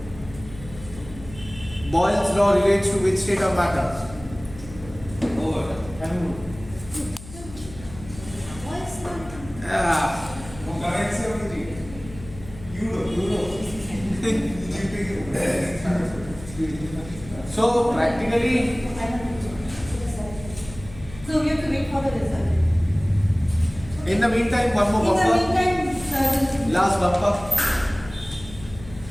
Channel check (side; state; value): left; noise; hum, 16 dB below the sound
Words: Boyle's law relates to which state of matter? Over. What's not? Currency of Egypt. Euro. So practically, So we have to wait for the result. in the meantime, one more In the bumper. meantime, Last bumper.